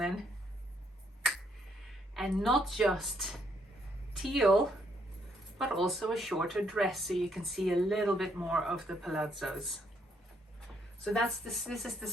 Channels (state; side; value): normal; both; correlation 0.72